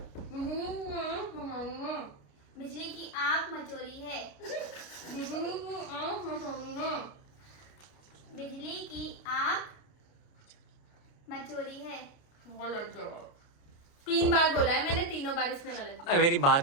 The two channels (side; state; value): right; late; 29 ms